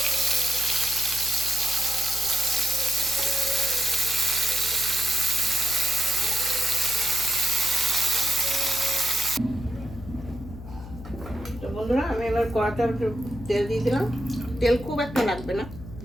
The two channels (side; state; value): left; noise; hum, 14 dB below the sound